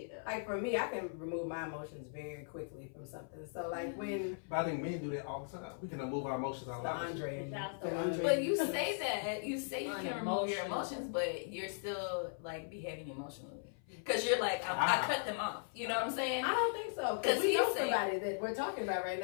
like for me, I can remove my emotions very quickly from something. So like when But I think men do that all the time. We can remove our emotions out loud. Andre That's and the Andre. But you say that. You say you can remove your Unemotional. emotions, but you're still like behaving emotionally. Because you're like, I cut them off. You know what I'm saying? I don't think so. 'Cause Because we he's know saying- somebody that we're talking about right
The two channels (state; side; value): silent; right; 52 dB below the other